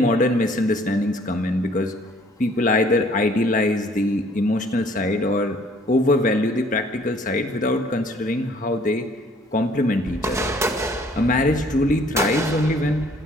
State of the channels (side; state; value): both; normal; correlation 0.58